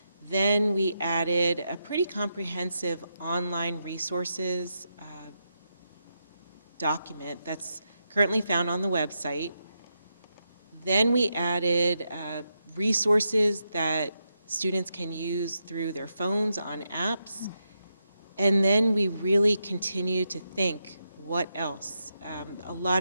Then we added a pretty comprehensive online resources document that's currently found on the website. Then we added resources that students can use through their phones on apps. And then we really continue to think, what else? A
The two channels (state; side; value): inverted; both; correlation -0.85